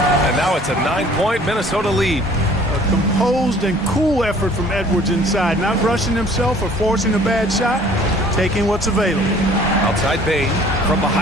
And now it's a 9-point Minnesota lead. A composed and cool effort from Edwards inside. Not rushing himself or forcing a bad shot. Taking what's available. Outside Bain from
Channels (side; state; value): both; normal; correlation 0.53